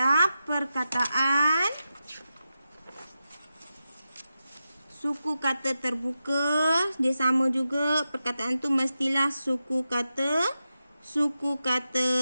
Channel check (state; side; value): inverted; both; correlation -0.90